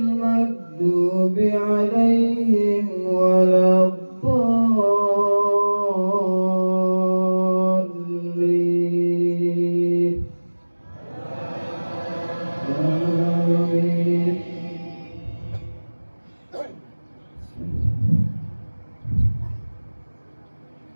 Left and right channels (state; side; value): inverted; both; correlation -1.00